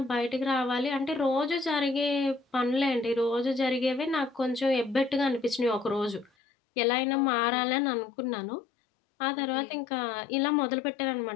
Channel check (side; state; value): right; drops out; at 6.3 s